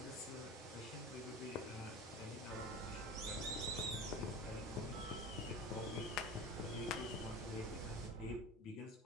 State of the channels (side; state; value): both; normal; correlation 0.32